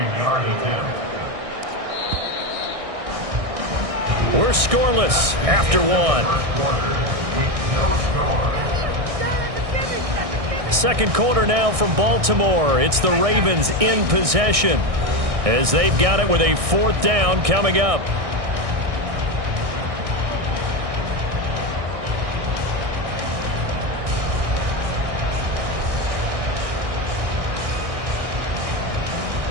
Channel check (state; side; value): late; left; 1.6 ms